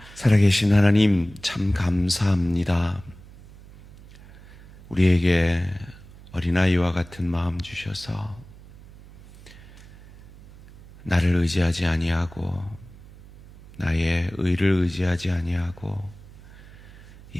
살아계신 하나님 참 감사합니다. 우리에게 어린아이와 같은 마음 주셔서 나를 의지하지 아니하고 나의 의를 의지하지 아니하고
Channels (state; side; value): noise; right; hum, 20 dB below the sound